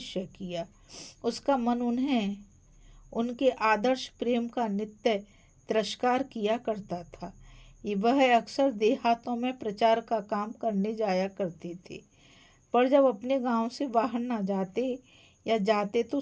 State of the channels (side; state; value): both; identical; correlation 1.00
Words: किया। उसका मन उनके आदर्श प्रेम का नित्य तिरस्कार किया करता था। वह अक्सर देहातों में प्रचार का काम करने जाया करते थे, पर जब अपने गांव से बाहर न जाते या जाते तो